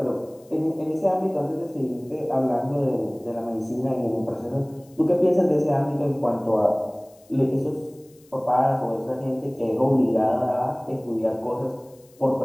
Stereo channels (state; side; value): noise; left; hiss, 30 dB below the sound